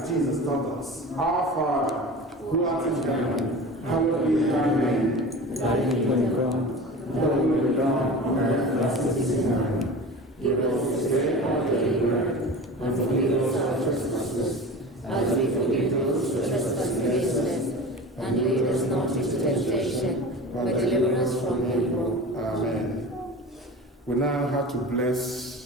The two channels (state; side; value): normal; both; correlation 0.34